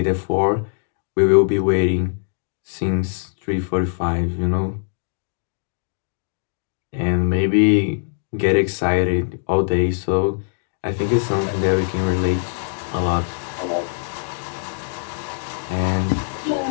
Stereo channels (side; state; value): right; silent; digital silence